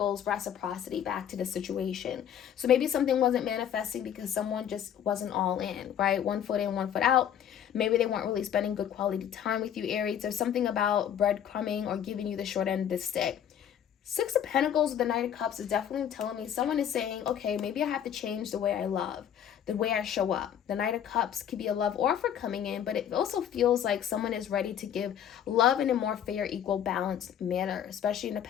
reciprocity back to the situation. So maybe something wasn't manifesting because someone just wasn't all in, right? One foot in, one foot out. Maybe they weren't really spending good quality time with you, Aries. There's something about breadcrumbing or giving you the short end of the stick. Six of Pentacles with the Knight of Cups is definitely telling me someone is saying, okay, maybe I have to change the way I love, the way I show up. The Knight of Cups could be a love offer coming in, but it also feels like someone is ready to give love in a more fair, equal, balanced manner, especially in the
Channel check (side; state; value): right; quieter; 9.4 dB